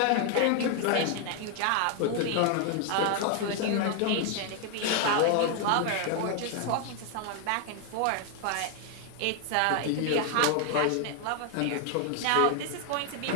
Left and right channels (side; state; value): both; different; correlation 0.00